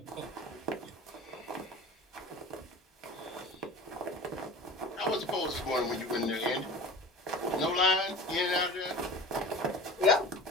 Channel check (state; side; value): normal; both; correlation 0.37